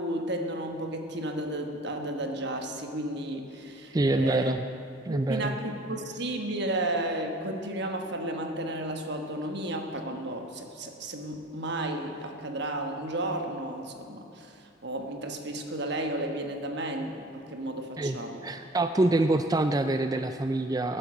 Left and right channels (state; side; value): normal; both; correlation 0.46